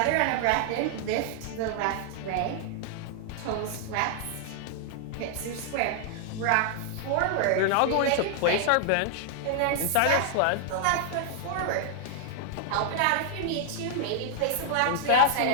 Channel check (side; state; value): both; different; correlation 0.00